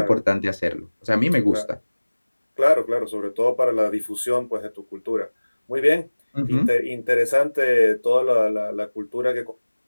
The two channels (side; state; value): both; inverted; correlation -1.00